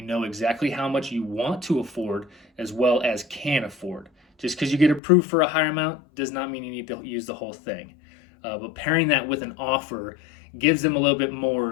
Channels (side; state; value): right; drops out; at 5.0 s